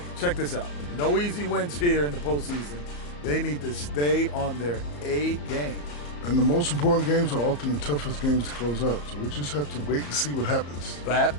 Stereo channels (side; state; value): right; late; 34 ms